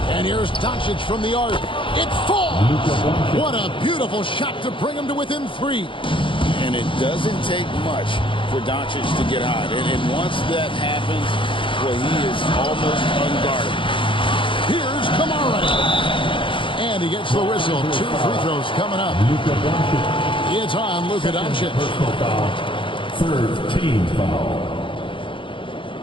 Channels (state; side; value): late; right; 0.25 ms